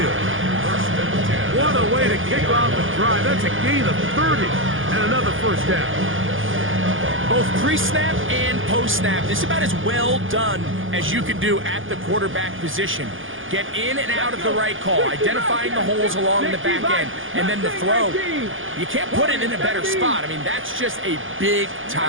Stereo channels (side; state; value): left; late; 0.58 ms